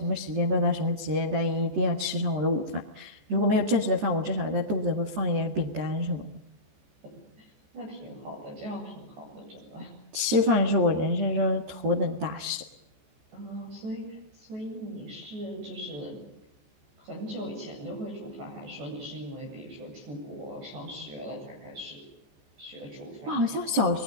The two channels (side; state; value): left; late; 14 ms